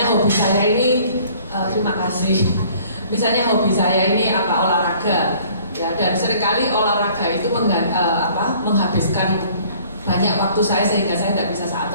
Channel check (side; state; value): both; inverted; correlation -0.54